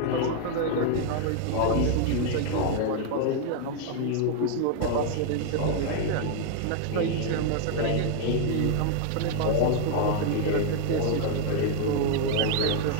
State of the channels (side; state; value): both; different; correlation 0.00